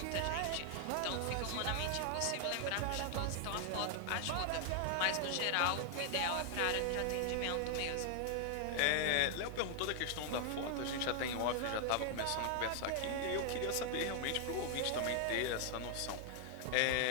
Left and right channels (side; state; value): both; different; correlation 0.00